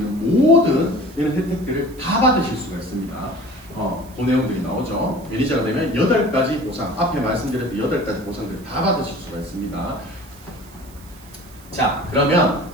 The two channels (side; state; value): right; noise; hiss, 24 dB below the sound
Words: 모든 이런 혜택들을 다 받으실 수가 있습니다. 그 내용들이 나오죠. 매니저가 되면 8가지 보상, 앞에 말씀드렸던 8가지 보상들을 다 받으실 수가 있습니다. 자, 그러면